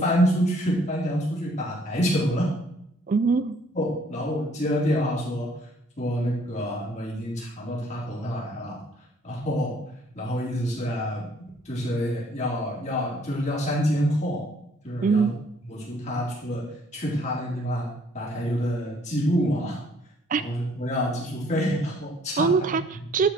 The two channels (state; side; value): normal; both; correlation 0.61